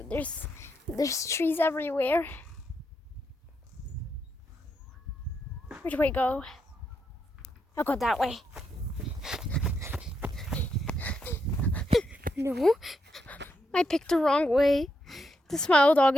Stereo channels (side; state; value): both; normal; correlation 0.80